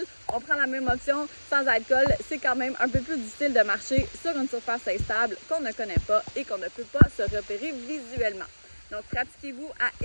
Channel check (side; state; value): both; inverted; correlation -1.00